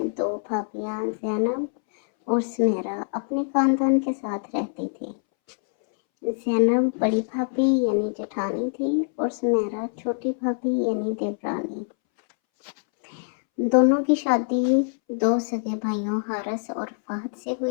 दो भाभियां ज़ैनब और सुमेरा अपने खानदान के साथ रहती थी। ज़ैनब बड़ी भाभी यानी जेठानी थी और सुमेरा छोटी भाभी यानी देवरानी। दोनों की शादी दो सगे भाइयों हारिस और फहद से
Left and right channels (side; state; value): right; silent; 62 dB below the other